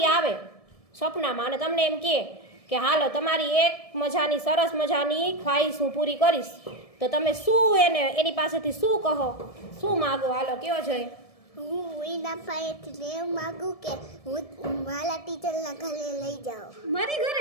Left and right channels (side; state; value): right; late; 1.7 ms